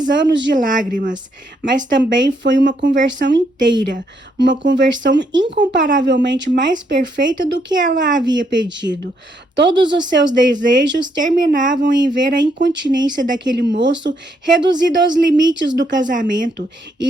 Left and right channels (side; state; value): both; normal; correlation 0.74